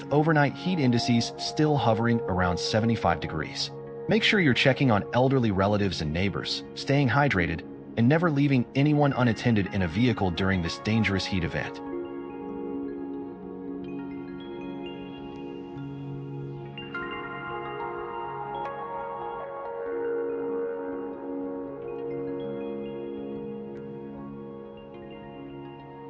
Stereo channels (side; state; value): both; identical; correlation 1.00